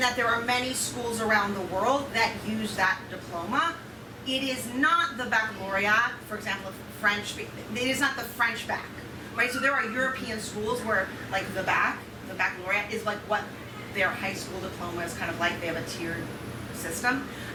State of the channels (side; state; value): both; identical; correlation 1.00